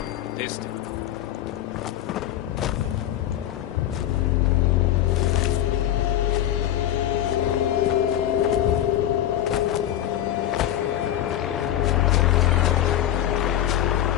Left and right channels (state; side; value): quieter; right; 11.8 dB